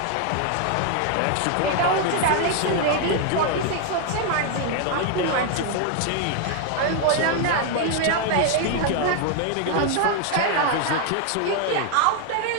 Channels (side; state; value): both; different; correlation 0.00